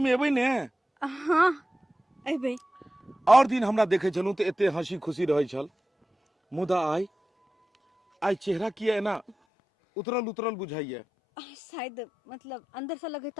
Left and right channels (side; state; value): right; drops out; at 9.3 s